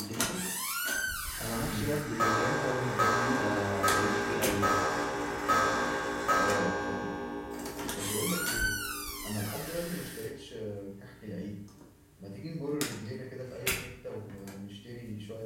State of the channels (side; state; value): both; identical; correlation 1.00